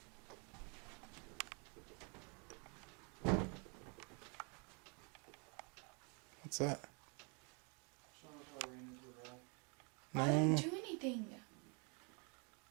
What's that? I didn't No. do anything.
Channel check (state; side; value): quieter; left; 34.3 dB